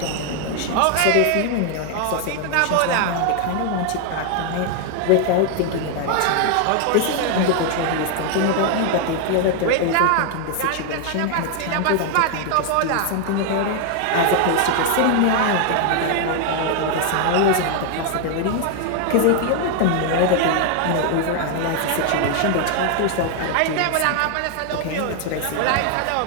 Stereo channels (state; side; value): different; both; correlation 0.01